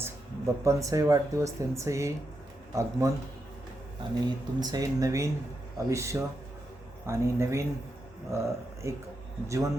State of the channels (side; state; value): both; normal; correlation 0.85